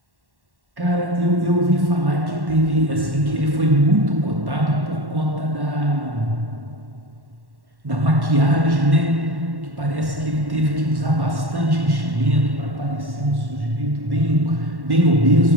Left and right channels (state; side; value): late; left; 1.1 ms